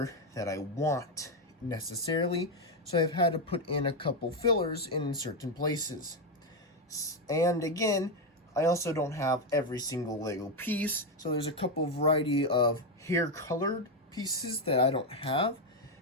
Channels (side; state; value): both; normal; correlation 0.06